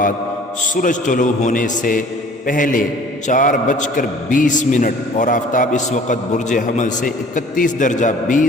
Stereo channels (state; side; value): normal; both; correlation 0.51